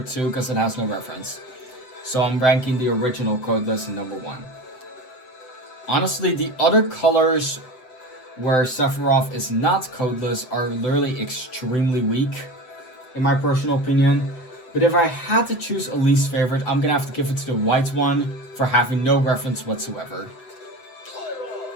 2 because it has no reference. So I'm ranking the original Codeless in number 1. Honestly, the other colors where Sephiroth is not Codeless are literally extremely weak, in my personal opinion. But if I had to choose a least favorite, I'm gonna have to give it to the white one for having no reference whatsoever.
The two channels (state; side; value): late; right; 7.8 ms